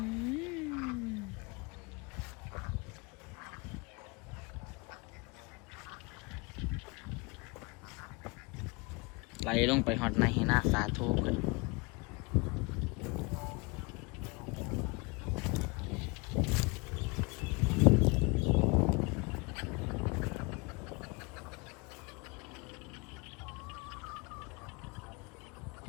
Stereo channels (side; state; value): right; quieter; 27.9 dB